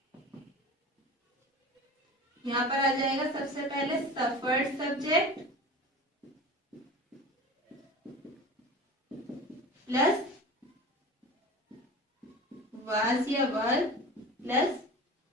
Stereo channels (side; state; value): both; normal; correlation 0.36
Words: यहाँ पर आ जाएगा सबसे पहले सफर्ड सब्जेक्ट प्लस वाज या were plus